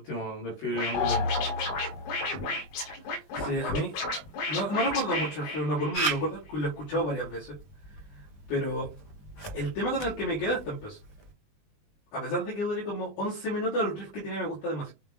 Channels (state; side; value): late; right; 20 ms